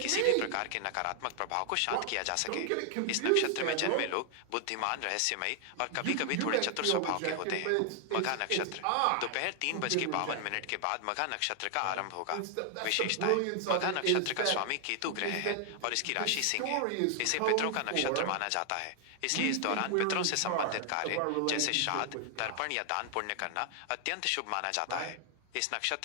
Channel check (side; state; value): both; different; correlation 0.00